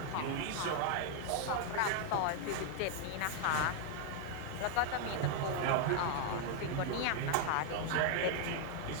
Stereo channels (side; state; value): both; different; correlation 0.00